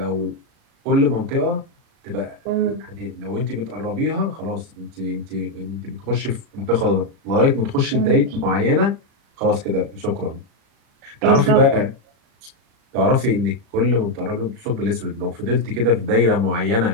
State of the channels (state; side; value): late; left; 36 ms